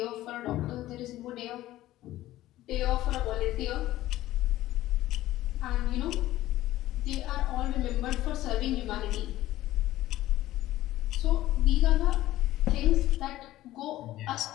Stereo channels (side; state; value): right; quieter; 15.3 dB